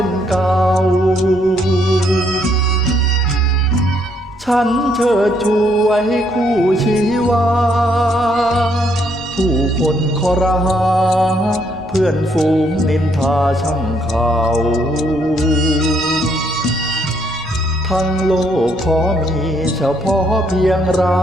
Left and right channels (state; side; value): normal; both; correlation 0.71